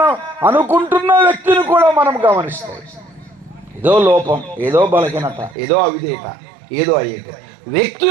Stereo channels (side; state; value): left; drops out; at 5.6 s